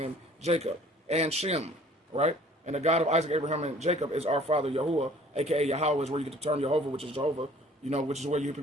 Jacob and Shem, right? And the God of Isaac, Abraham, and Jacob is our father Yahuwah, aka Yahweh, is where you get the term Jehovah, which is Jehovah, you know, which is where you hear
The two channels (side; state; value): both; normal; correlation 0.53